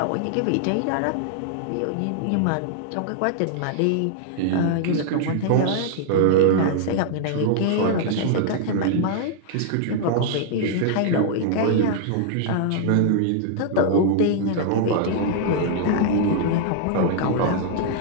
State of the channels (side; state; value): both; different; correlation -0.01